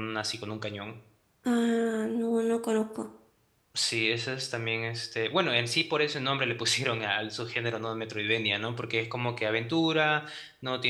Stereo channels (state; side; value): identical; both; correlation 1.00